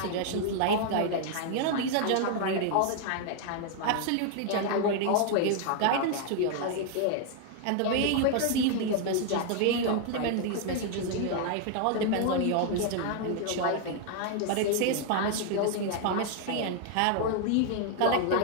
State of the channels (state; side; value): different; both; correlation 0.00